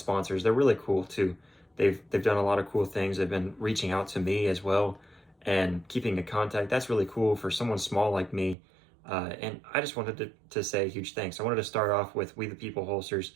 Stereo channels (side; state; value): left; drops out; at 8.6 s